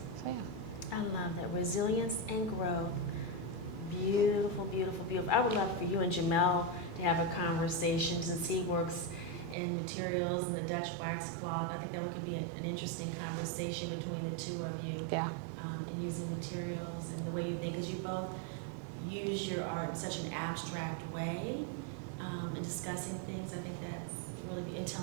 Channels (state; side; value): drops out; left; at 9.6 s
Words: yeah. I love that, resilience and growth. Beautiful, beautiful, beautiful. I would love for you and Jamel to have a conversation, since he works in materials and the Dutch wax cloth. I think that could be an interesting conversation between the two of you. Yeah. And using materials and the way you think, because you both use your art in such an abstract way, and discussing things. I think that's really and